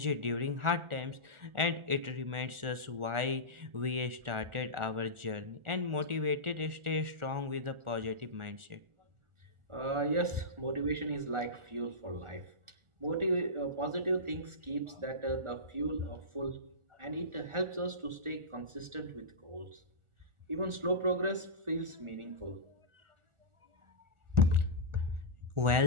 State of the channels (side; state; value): left; late; 1.4 ms